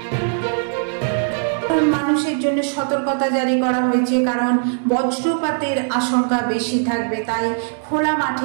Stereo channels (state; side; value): silent; left; 66 dB below the other